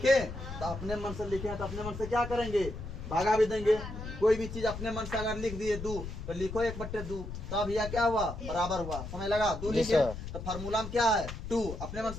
तो अपने मन से लिखे तो अपने मन से क्या करेंगे भागा भी देंगे। कोई भी चीज अपने मन से अगर लिख दिए 2 तो लिखो 1/2 तब यह क्या हुआ बराबर हुआ, समझ लगा 2 लिखे तो फार्मूला में क्या है 2 अपने मन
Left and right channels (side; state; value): left; noise; rumble, 8 dB below the sound